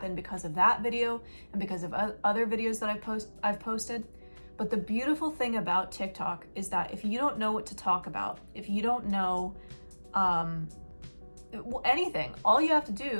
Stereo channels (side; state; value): both; inverted; correlation -1.00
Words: because of that video and because of other videos that I've posted. But the beautiful thing about TikTok is that if you don't know what to talk about, if you don't know anything, all you have to